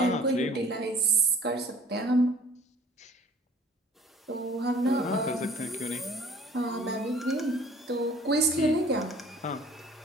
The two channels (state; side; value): normal; both; correlation 0.51